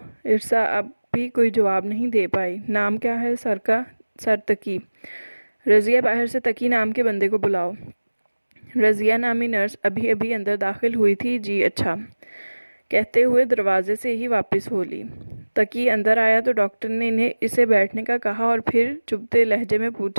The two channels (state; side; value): inverted; both; correlation -1.00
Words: ارسا اب بھی کوئی جواب نہیں دے پائی۔ نام کیا ہے سر کا؟ سرتقی۔ رضیہ باہر سے تقی نام کے بندے کو بلاؤ۔ رضیہ نامی نرس ابھی ابھی اندر داخل ہوئی تھی۔ جی اچھا کہتے ہوئے دروازے سے ہی واپس ہو لی۔ تقی اندر آیا تو ڈاکٹر نے اسے بیٹھنے کا کہا اور پھر چبھتے لہجے میں